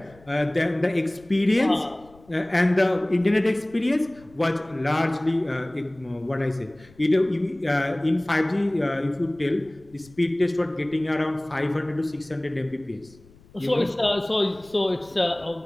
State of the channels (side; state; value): left; noise; rumble, 26 dB below the sound